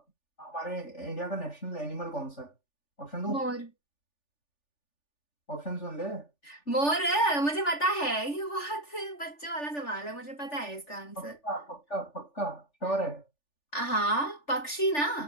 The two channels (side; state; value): right; late; 3.4 ms